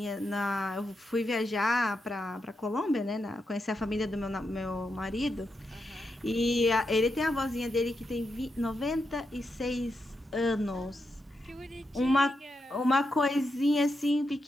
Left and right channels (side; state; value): both; normal; correlation 0.85